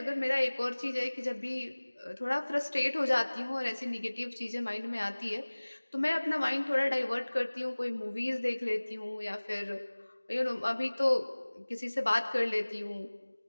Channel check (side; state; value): both; inverted; correlation -1.00